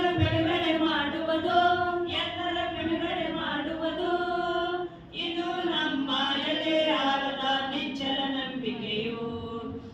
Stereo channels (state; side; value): identical; both; correlation 1.00